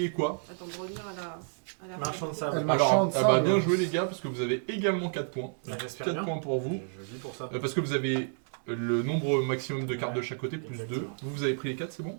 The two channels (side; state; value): left; silent; 58 dB below the other